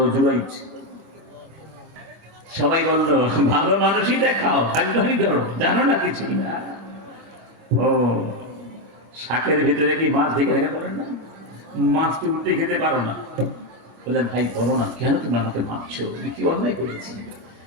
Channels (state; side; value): late; left; 25 ms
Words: জুরাইজ। সবাই বলল ভালো মানুষই দেখাও, ভাগ্যহানি করো, জানো না কিছুই না। ও শাকের ভিতরে কি মাছ ঢেকে রেখে পারেন না? মাছটি উল্টে খেতে পারো না। বললেন ভাই বলো না, কেন তুমি আমাকে ভাবছো, কি অন্যায় করেছি?